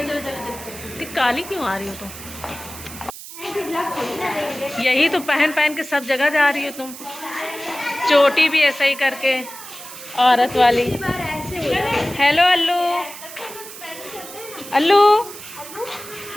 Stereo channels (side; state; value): right; noise; hiss, 13 dB below the sound